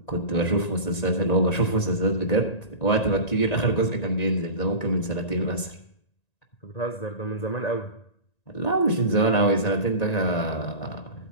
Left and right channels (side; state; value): right; late; 1.9 ms